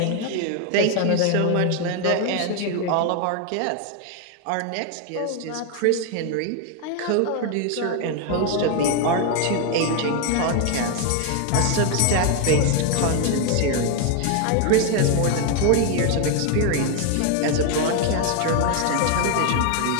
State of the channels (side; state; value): both; different; correlation 0.01